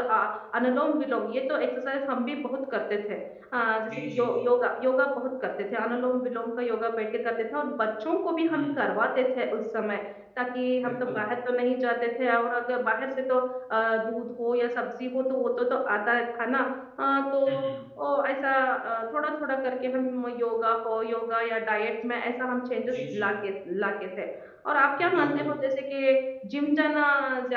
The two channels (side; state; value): both; identical; correlation 1.00